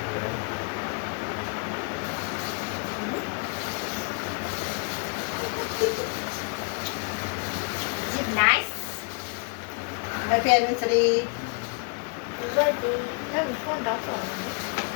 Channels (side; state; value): right; quieter; 38.8 dB